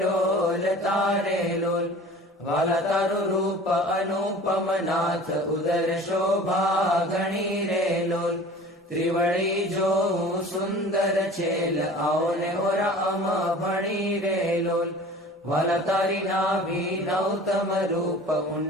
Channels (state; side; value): normal; both; correlation 0.43